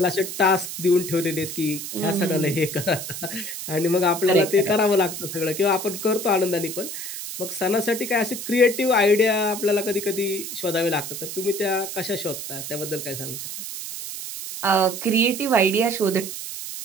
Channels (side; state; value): right; noise; hiss, 7 dB below the sound